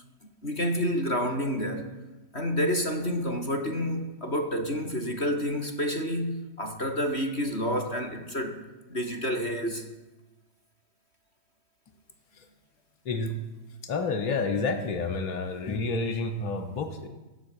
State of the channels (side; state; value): right; late; 3.1 ms